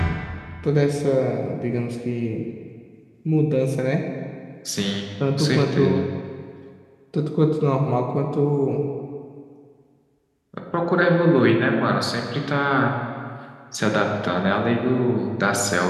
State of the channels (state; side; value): identical; both; correlation 1.00